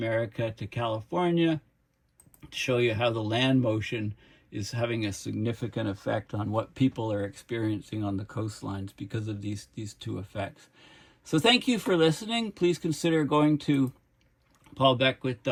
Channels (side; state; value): both; identical; correlation 1.00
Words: to California, to show you how the land motion is having a significant effect on what people are experiencing on the coastlines because of these two effects. So thank you for listening. Please consider going to